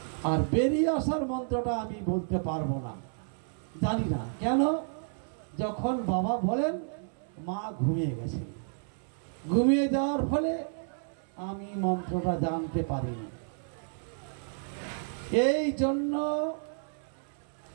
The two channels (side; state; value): left; silent; 57 dB below the other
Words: আর বেরিয়ে আসার মন্ত্রটা আমি বলতে পারবো না, জানি না। কেন? যখন বাবা বলেন মা ঘুমিয়ে গেছেন, ঘুমিয়ে যাওয়ার ফলে আমি মন্ত্রটা জানতে পারিনি। এই জন্য